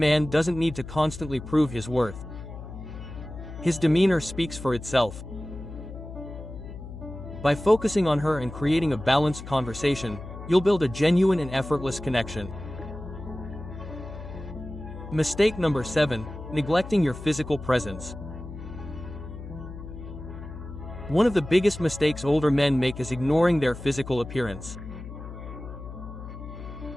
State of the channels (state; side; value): noise; left; hum, 11 dB below the sound